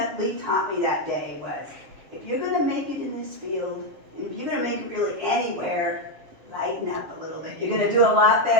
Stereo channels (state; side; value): late; left; 6.9 ms